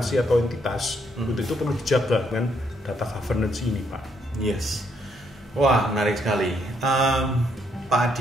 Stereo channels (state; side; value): normal; both; correlation 0.73